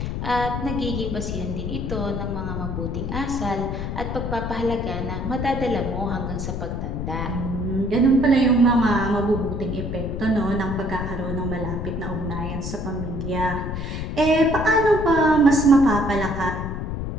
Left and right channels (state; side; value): noise; left; rumble, 4 dB below the sound